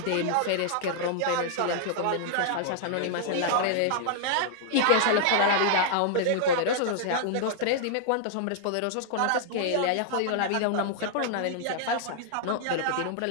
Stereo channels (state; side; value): different; both; correlation -0.01